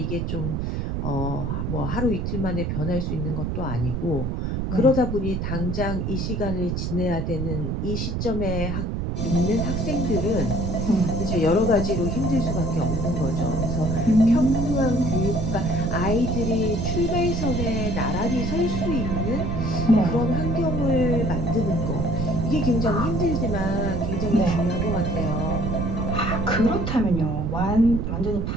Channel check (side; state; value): right; noise; rumble, 1 dB below the sound